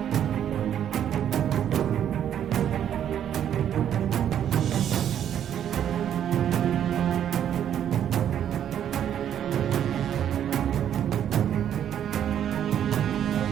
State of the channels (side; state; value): left; quieter; 9.8 dB